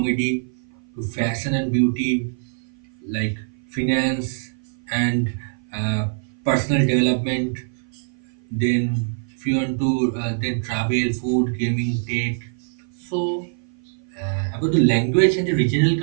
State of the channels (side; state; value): left; silent; 56 dB below the other